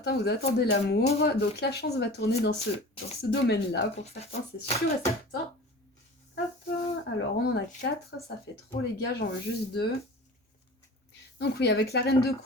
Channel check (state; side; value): normal; both; correlation 0.38